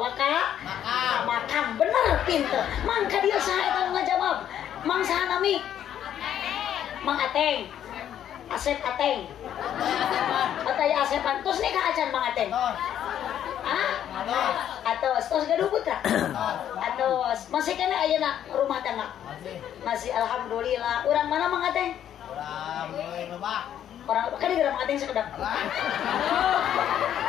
ka makam bener pinter mangka dia saha eta ngajawab mang saha nami Mang Ateng Asep Ateng Ataya Asepan tos nih ka acan Mang Ateng atos tos gaduh putra atos masih kena ayeuna rumah tangga masih alhamdulillah urang mana Mang Ateng urang lebak orang kan di Mang Ateng sekedap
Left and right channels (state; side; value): quieter; right; 10.3 dB